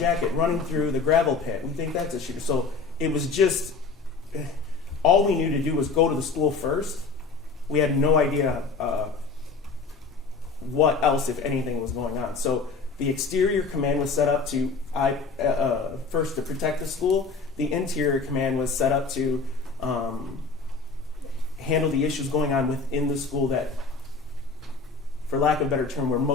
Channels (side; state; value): right; quieter; 4.4 dB